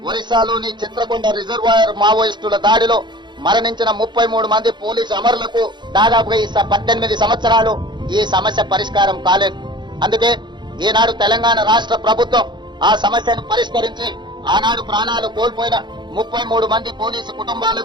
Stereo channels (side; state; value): left; late; 0.22 ms